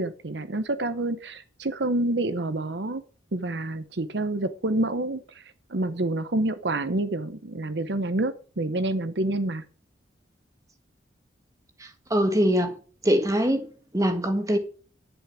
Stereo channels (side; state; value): both; normal; correlation 0.58